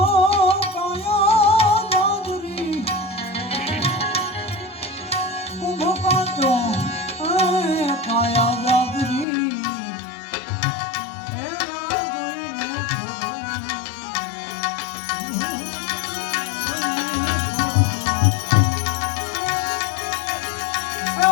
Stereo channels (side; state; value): right; drops out; at 9.2 s